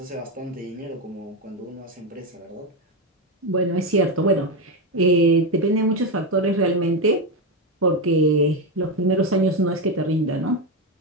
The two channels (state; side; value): normal; both; correlation 0.10